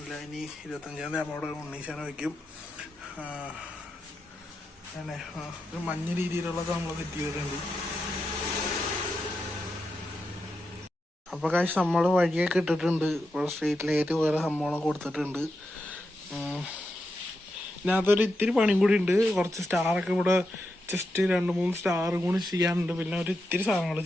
ഇനി 25-ാം തീയതി അവിടെ ഉണ്ണീശാനം വയ്ക്കും. അങ്ങനെ ഒരു മഞ്ഞ രീതിയിലുള്ളത് നമ്മൾ സെറ്റ് ചെയ്തിട്ടുണ്ട്. അപ്പോൾ കാശ് നമ്മൾ വഴിയൊക്കെ ഇട്ടിട്ടുണ്ട്. ഇവിടെ സ്ട്രീറ്റ് ലൈറ്റ് വേറെ സംഭവങ്ങളൊക്കെ കൊടുത്തിട്ടുണ്ട്. ഇതിനകത്തൊരു ഇത്തിരി പണിയും കൂടി ഉണ്ട്. കുറച്ച് സ്റ്റാറൊക്കെ ഇവിടെ ജസ്റ്റ് 2-3 സ്റ്റാറും കൂടി ചെയ്യാനുണ്ട്. പിന്നെ ഒരു ഇത്തിരി സാധനങ്ങൾ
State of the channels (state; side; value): normal; both; correlation 0.86